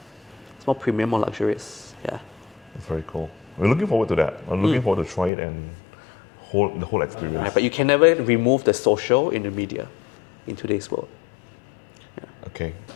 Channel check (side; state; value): right; drops out; at 5.3 s